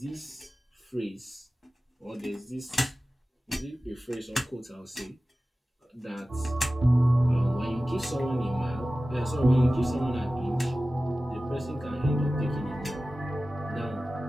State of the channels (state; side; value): normal; both; correlation 0.96